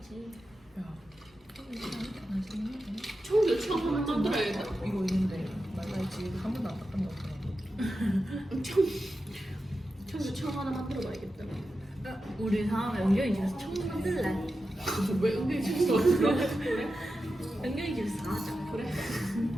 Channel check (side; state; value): both; normal; correlation 0.91